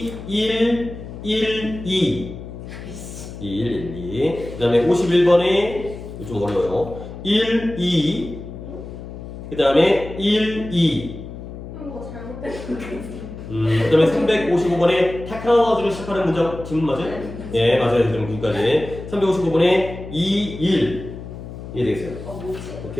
1, 1, 2, 1, 1, 2, 그 다음에 51번에 좀 어려워요. 1, 2, 그 다음에 1, 2. 이거 잘못된 거 같아요. 그 다음에 355번에 테크놀로지를 시작하는 문장 질문 맞아요? 예, 맞아요. 그럼 여기까지. 355번에 2, 1. 이해되겠어요? 뭐지?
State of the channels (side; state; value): left; noise; hum, 11 dB below the sound